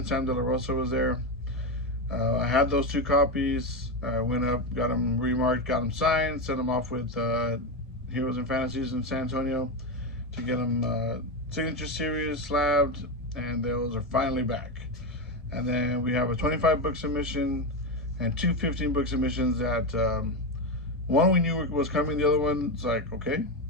Sam De La Rosa was there. I had those 2 copies. I went up, got them remarked, got them signed, sent them off with Heroes and Fantasies in San Antonio to get them signature series slabbed, and those are finally back. And then we have a 25-book submission and 2 15-book submissions that one we knew was coming, the other one's like, okay,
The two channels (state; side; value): normal; both; correlation 0.13